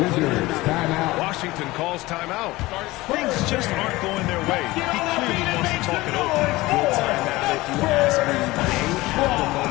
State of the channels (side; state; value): right; quieter; 19.8 dB